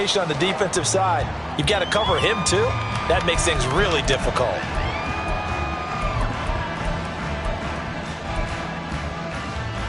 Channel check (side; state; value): both; identical; correlation 1.00